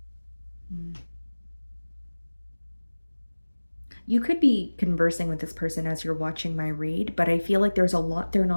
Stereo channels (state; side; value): inverted; both; correlation -1.00